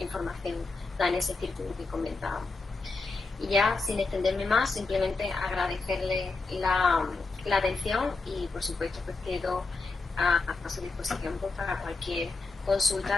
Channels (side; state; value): right; quieter; 3.8 dB